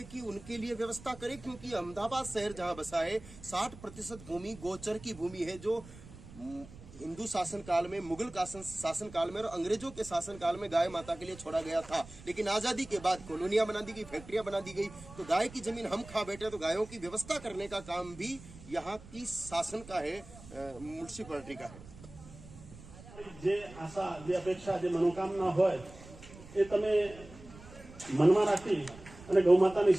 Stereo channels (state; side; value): noise; right; rumble, 18 dB below the sound